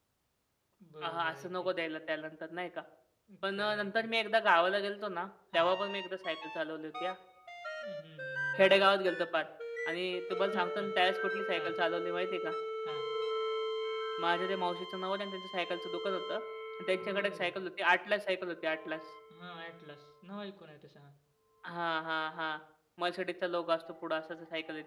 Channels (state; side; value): identical; both; correlation 1.00